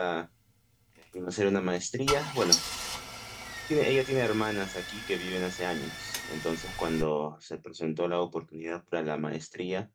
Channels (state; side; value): identical; both; correlation 1.00